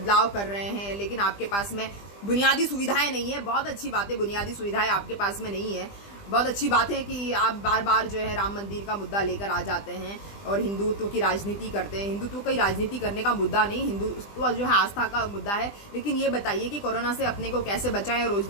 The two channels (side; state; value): right; late; 20 ms